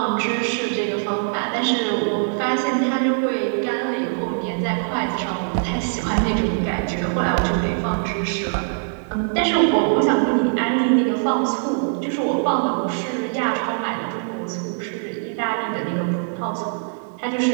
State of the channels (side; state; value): left; silent; digital silence